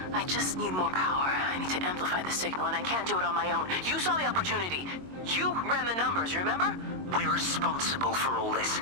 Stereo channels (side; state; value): left; late; 22 ms